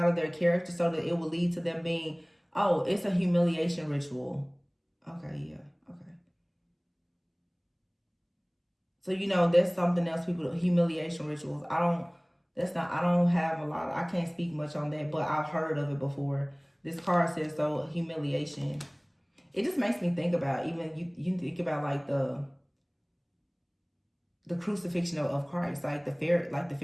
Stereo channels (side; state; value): both; identical; correlation 1.00